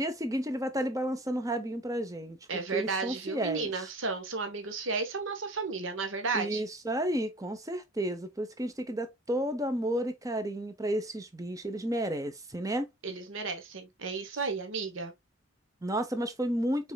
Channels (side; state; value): both; normal; correlation 0.48